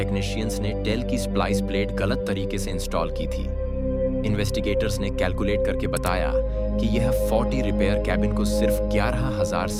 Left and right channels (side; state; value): both; identical; correlation 1.00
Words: ने टेल की स्प्लाइस प्लेट गलत तरीके से इंस्टॉल की थी। इन्वेस्टिगेटर्स ने कैलकुलेट करके बताया कि यह 40 रिपेयर कैबिन को सिर्फ 11,000